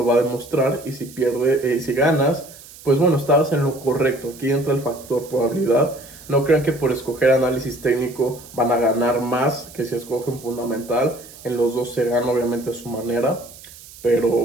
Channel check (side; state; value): right; noise; hiss, 19 dB below the sound